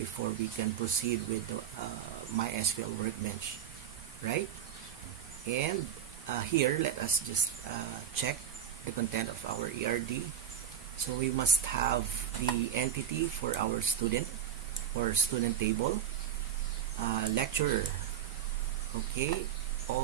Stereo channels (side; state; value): left; quieter; 9.2 dB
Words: we can proceed with the MySQL Workbench, right? And here, let us just check the content of our ERD. So we must have the entity for our student or student table, lecturer, okay,